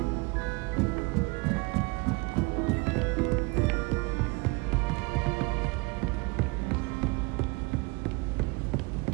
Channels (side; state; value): left; quieter; 26.9 dB